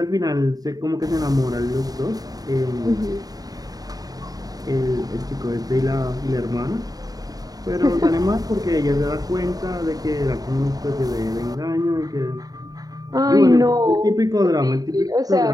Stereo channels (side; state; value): left; late; 0.18 ms